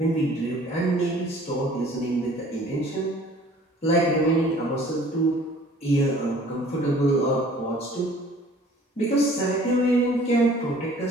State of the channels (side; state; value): both; normal; correlation 0.52